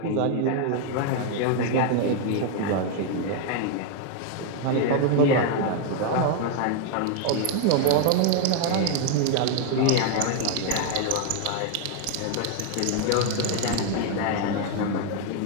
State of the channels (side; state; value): both; different; correlation 0.01